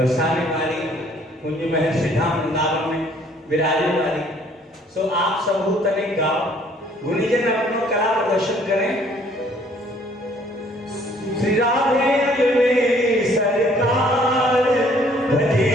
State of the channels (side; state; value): both; normal; correlation 0.60